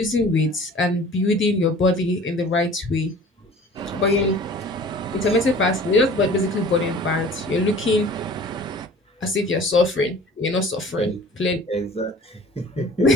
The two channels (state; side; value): normal; both; correlation 0.46